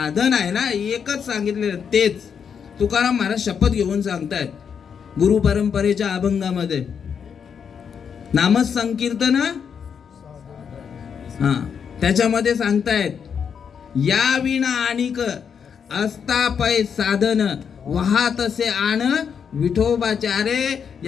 आहे ना, एकच सांगितलेलं तेच. तुकाराम महाराज शपथ घेऊन सांगतायत गुरु परंपरेच्या अभंगामध्ये. नामच संकीर्तन, हा, त्याच्यामध्ये सांगतायत या विना आणिक असता पै साधन, वाहतसे आण विठोबाचारे.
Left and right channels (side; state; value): right; quieter; 7.1 dB